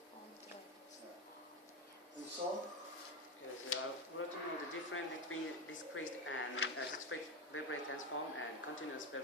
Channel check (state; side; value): normal; both; correlation 0.15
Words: And so. Yes, we want to know the difference between discrete and discrete Fourier transform and continuous